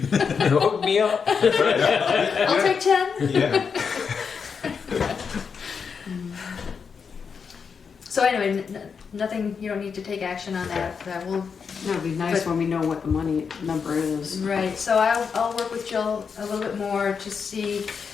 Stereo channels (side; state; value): right; quieter; 6.0 dB